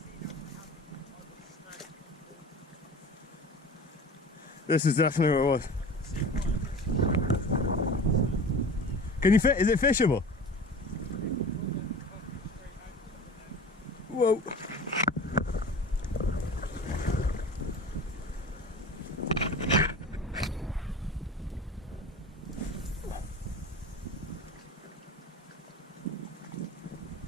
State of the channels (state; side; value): normal; both; correlation 0.37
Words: This is definitely what it was. Can you fit? Is it fishable? Whoa.